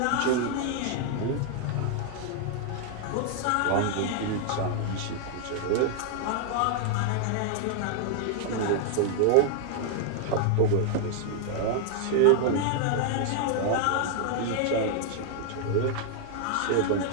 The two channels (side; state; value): both; different; correlation 0.00